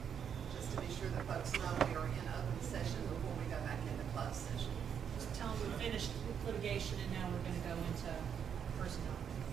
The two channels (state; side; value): quieter; left; 7.9 dB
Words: to be sure that folks know we are in open session before we go back into closed session. Just tell them we finished litigation and now we're going to go into personnel.